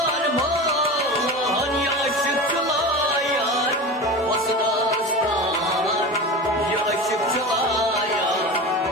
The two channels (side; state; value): both; normal; correlation 0.29